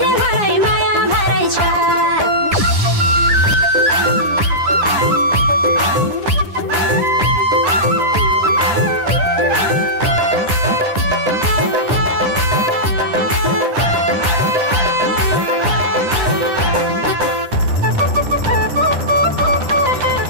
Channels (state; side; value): late; left; 9.9 ms